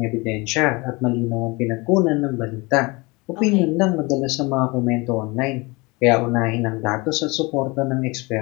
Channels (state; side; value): quieter; right; 25.6 dB